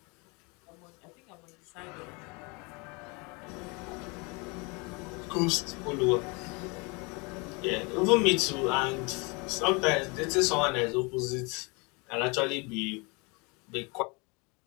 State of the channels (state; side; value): quieter; right; 29.6 dB